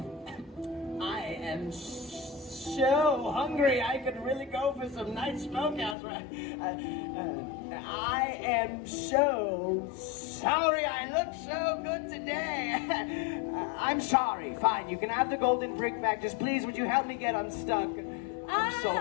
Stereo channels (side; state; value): right; drops out; at 6.0 s